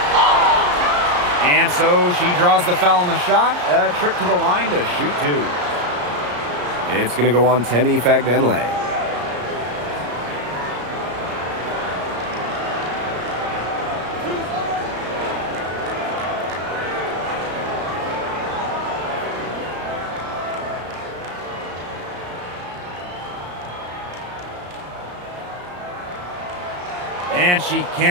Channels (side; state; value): left; late; 34 ms